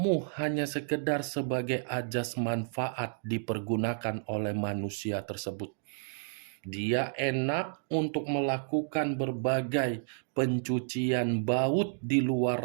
hanya sekedar sebagai ajas manfaat dipergunakan oleh manusia tersebut. Dia enak untuk melakukan berbagai pencucian baut di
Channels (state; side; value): silent; left; digital silence